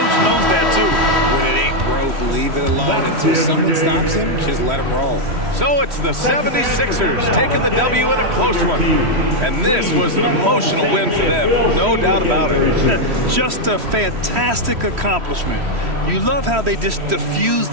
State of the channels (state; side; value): late; left; 3.1 ms